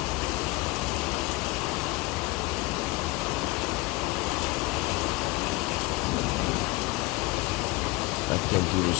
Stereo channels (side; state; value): right; quieter; 21.8 dB